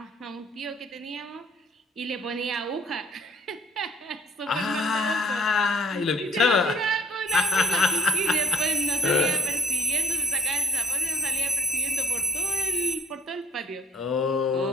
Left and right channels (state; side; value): normal; both; correlation 0.57